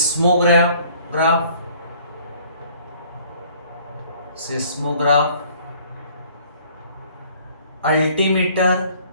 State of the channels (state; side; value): inverted; both; correlation -0.57